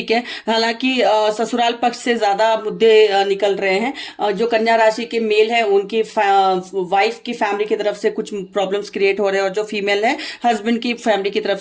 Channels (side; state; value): both; identical; correlation 1.00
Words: है, हालांकि ससुराल पक्ष से ज्यादा मुद्दे निकल रहे हैं। जो कन्या राशि के मेल है उनकी वाइफ की फैमिली की तरफ से कुछ प्रॉब्लम्स क्रिएट हो रहे हैं और जो फीमेल है हस्बैंड की फैमिली की तरफ